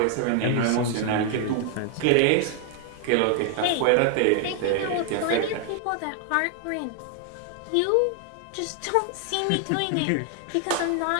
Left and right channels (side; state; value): both; different; correlation 0.00